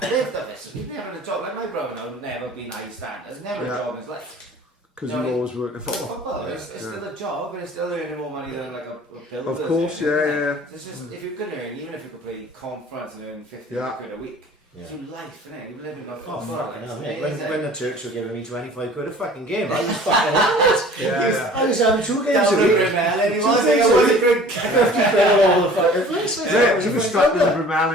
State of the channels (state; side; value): normal; both; correlation 0.47